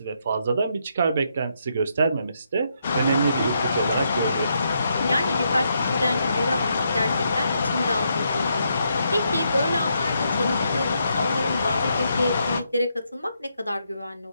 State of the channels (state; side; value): inverted; both; correlation -0.78